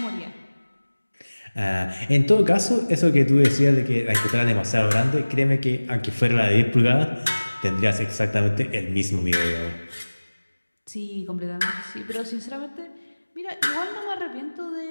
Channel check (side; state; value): both; inverted; correlation -1.00